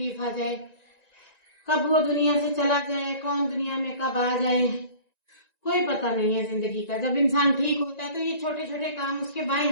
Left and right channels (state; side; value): late; right; 1.9 ms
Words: आ जाए, कब वो दुनिया से चला जाए, कौन दुनिया में कब आ जाए, कोई पता नहीं है जिंदगी का। जब इंसान ठीक होता है तो ये छोटे छोटे काम उसके बाएं